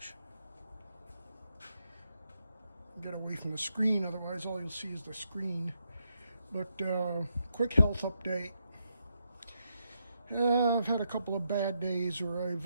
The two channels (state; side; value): inverted; both; correlation -0.81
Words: Get away from the screen, otherwise all you'll see is the screen. But quick health update. I've had a couple of bad days where